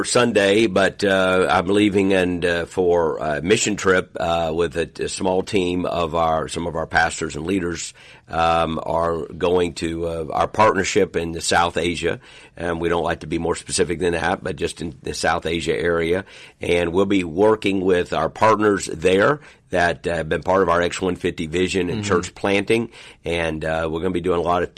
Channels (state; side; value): identical; both; correlation 1.00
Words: Sunday, but I'm leaving for a mission trip with a small team of some of our pastors and leaders are going to our partnership in South Asia. And we don't like to be more specific than that, but just in the South Asia area. And we'll be working with our partners there that have been part of our X150 vision and church planting. And we're going to be doing a lot of